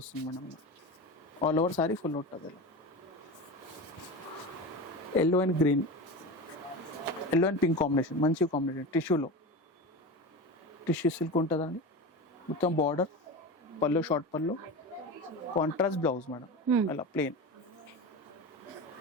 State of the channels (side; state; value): both; normal; correlation 0.26